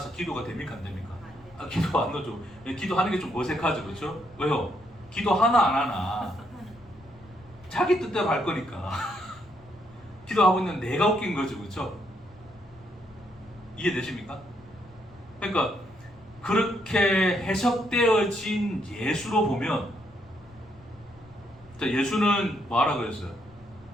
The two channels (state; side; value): noise; left; rumble, 26 dB below the sound